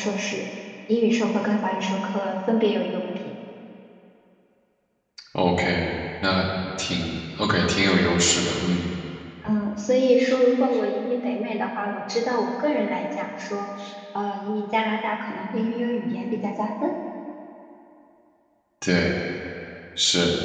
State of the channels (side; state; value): both; identical; correlation 1.00